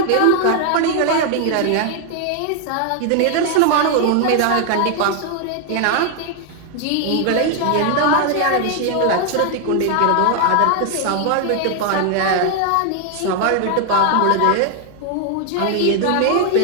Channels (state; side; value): different; both; correlation 0.00